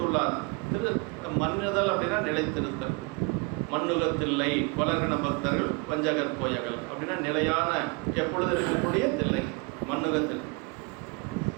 மன்னுதல் அப்படின்னா நிலைத்திருத்தல். மண்ணுகத்தில்லை கொலகண பக்தர்கள் வஞ்சகர் போயகல் அப்படின்னா நிலையான எப்பொழுது இருக்கக்கூடிய தில்லை மண்ணுகத்தில்.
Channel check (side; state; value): left; quieter; 30.0 dB